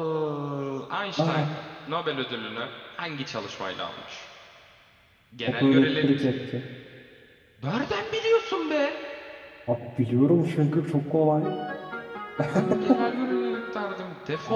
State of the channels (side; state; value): both; identical; correlation 1.00